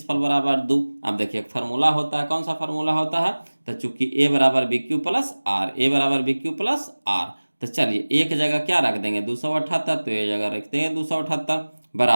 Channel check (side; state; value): both; inverted; correlation -1.00